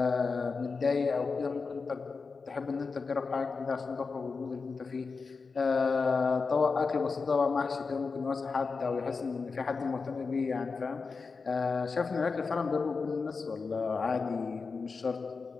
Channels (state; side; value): quieter; right; 4.7 dB